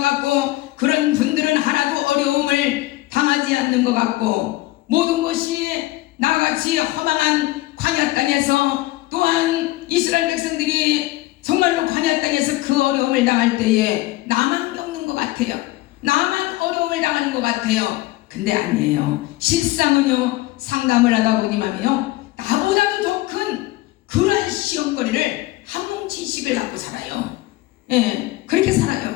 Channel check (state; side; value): quieter; right; 18.6 dB